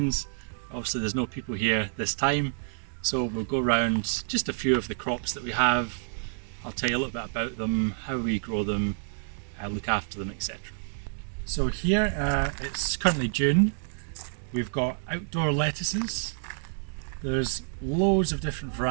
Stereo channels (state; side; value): silent; left; digital silence